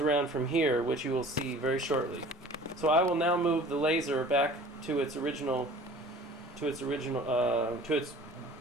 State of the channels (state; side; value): normal; both; correlation 0.46